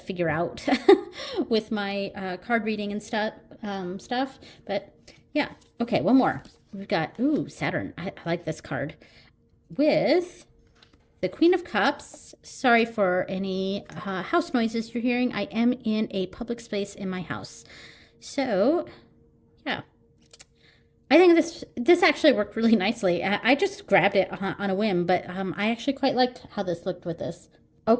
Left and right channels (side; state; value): both; identical; correlation 1.00